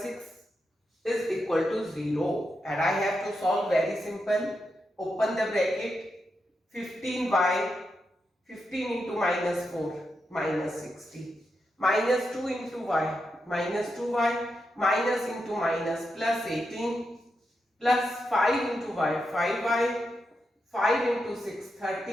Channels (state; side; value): normal; both; correlation 0.86